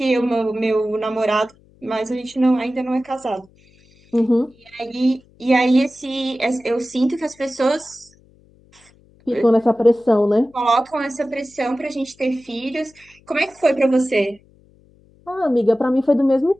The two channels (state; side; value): noise; left; hum, 30 dB below the sound